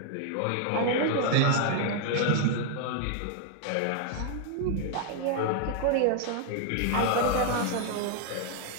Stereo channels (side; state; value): both; different; correlation 0.00